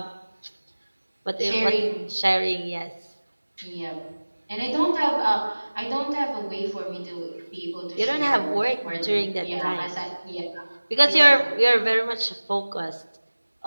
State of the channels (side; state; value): both; inverted; correlation -1.00